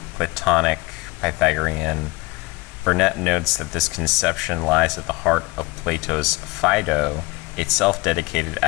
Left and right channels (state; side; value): quieter; right; 23.6 dB